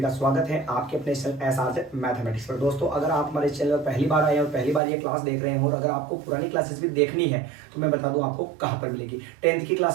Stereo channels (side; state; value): left; drops out; at 4.8 s